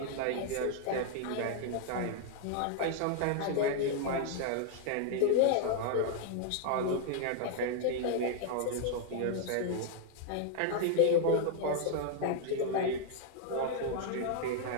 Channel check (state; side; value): different; both; correlation 0.00